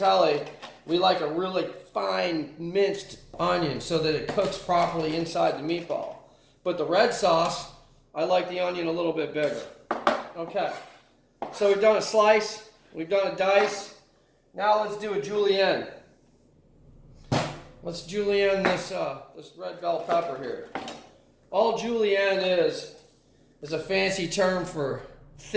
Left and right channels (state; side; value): identical; both; correlation 1.00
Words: we like a really fine minced onion so that it cooks properly inside the meatball. But the red sauce, I like the onion a little bit bigger. Okay, so we've done a slice, we've done a dice. Now let's do a julienne. Let's julienne this red bell pepper here. All julienne is a fancy term for